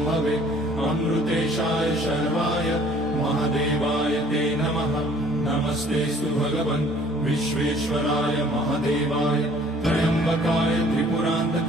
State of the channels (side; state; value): both; normal; correlation 0.55